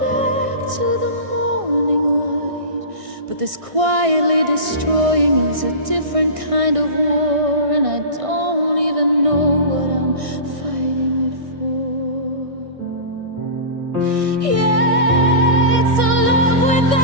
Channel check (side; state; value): left; late; 1.6 ms